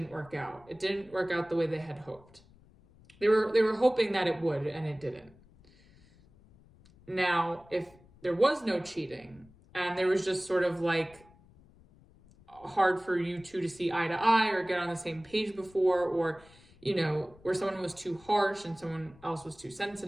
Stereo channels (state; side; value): noise; left; rumble, 26 dB below the sound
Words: work out. It didn't work out the way they had hoped. They were hoping that it would, and it didn't. Now, if there was no cheating and there was just sort of like hard for you two to see eye to eye or get on the same page before, or, you know, where someone was too harsh and someone else was too